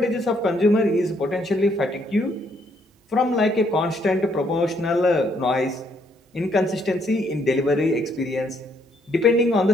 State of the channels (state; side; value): normal; both; correlation 0.70